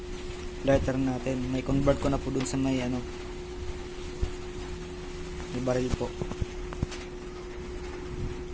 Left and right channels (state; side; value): identical; both; correlation 1.00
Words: lighter natin. May convert ko na po dun sa may may baril po.